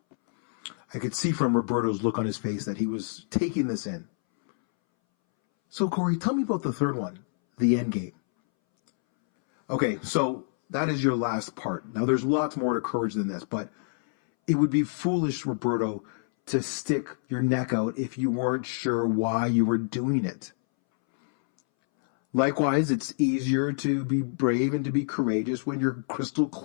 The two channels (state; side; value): silent; right; 60 dB below the other